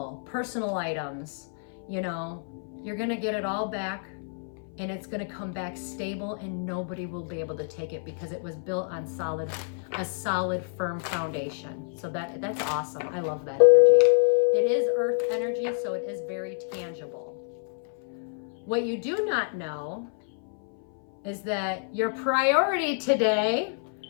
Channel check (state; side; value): silent; right; 57 dB below the other